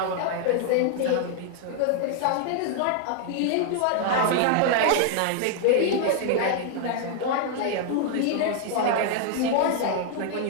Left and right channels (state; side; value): different; both; correlation 0.00